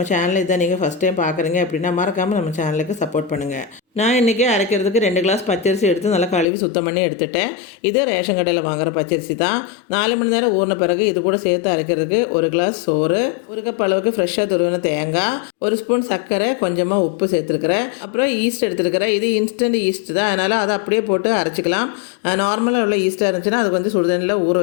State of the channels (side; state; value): right; drops out; at 6.5 s